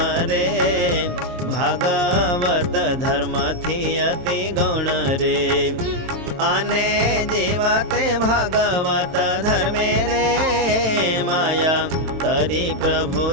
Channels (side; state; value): left; late; 22 ms